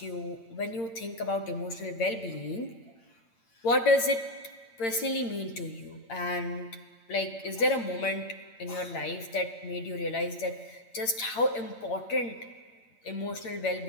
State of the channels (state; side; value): late; right; 8.8 ms